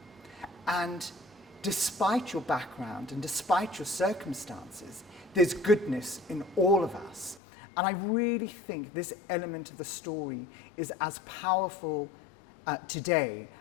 And despite your background and despite your circumstances, there's goodness in all of us. And I really think this element of the story is as powerful today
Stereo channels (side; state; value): right; drops out; at 7.4 s